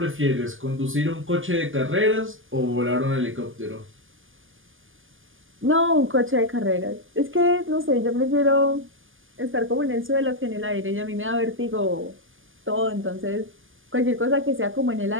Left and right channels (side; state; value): left; late; 0.58 ms